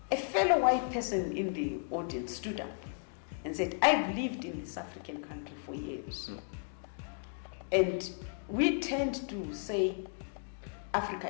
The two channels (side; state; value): right; silent; 55 dB below the other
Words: A fellow white person in the audience stood up and said, I've lived in this African country for years. And we tend to say Africa